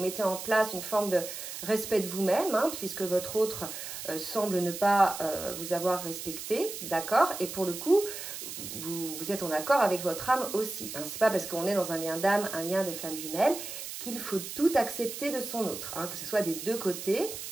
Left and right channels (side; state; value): right; noise; hiss, 8 dB below the sound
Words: en place une forme de respect de vous-même, hein, puisque votre autre semble ne pas vous avoir respecté, d'accord? Et pour le coup, vous êtes en accord avec votre âme aussi. Hein. Ce n'est pas parce qu'on est dans un lien d'âme, un lien de flamme jumelle, qu'il faut tout accepter de son autre, hein, que ce soit des deux côtés.